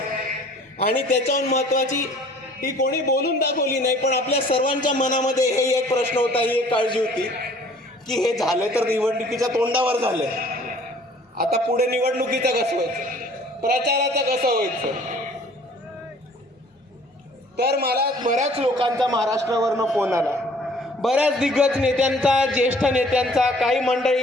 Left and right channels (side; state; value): both; normal; correlation 0.53